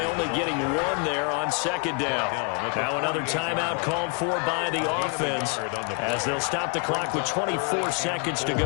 only getting 1 there on 2nd down. Now another timeout called for by the offense as they'll stop the clock with 24 seconds to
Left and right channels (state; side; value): quieter; right; 37.1 dB